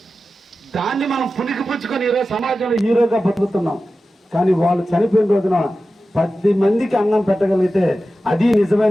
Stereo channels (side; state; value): both; normal; correlation 0.93